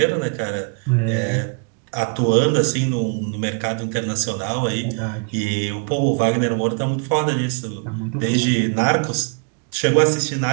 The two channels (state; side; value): quieter; left; 39.2 dB